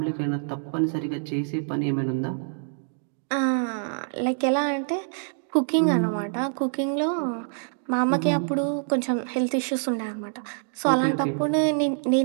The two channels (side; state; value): left; silent; digital silence